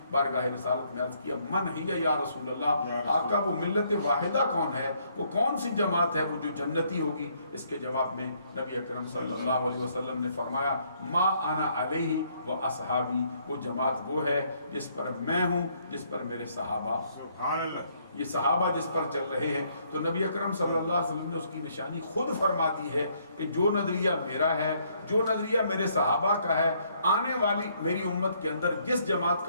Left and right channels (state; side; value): inverted; both; correlation -0.69